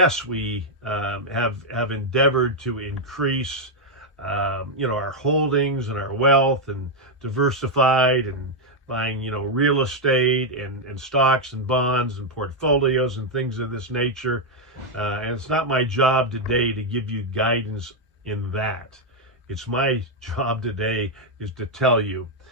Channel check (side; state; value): both; normal; correlation 0.01